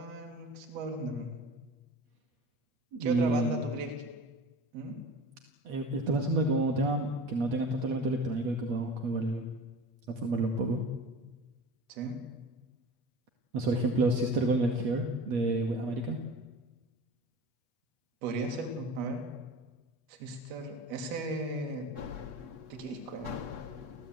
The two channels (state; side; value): late; left; 8.3 ms